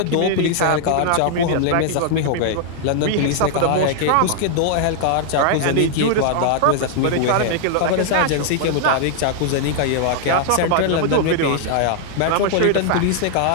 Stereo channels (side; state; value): both; different; correlation -0.01